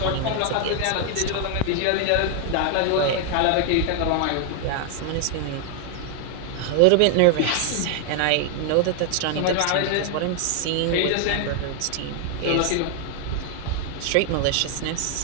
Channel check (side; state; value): both; different; correlation 0.00